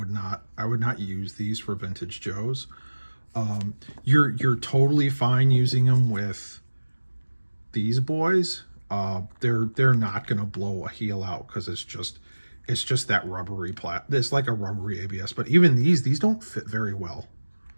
not use these for Vintage Joes. You're totally fine using them with these boys. They're not gonna blow a heel out because it's just that rubbery it's like a rubbery ABS. But even these don't fit very well.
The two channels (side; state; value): both; inverted; correlation -1.00